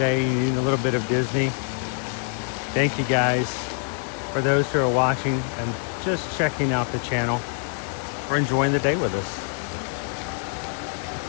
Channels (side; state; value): right; silent; 55 dB below the other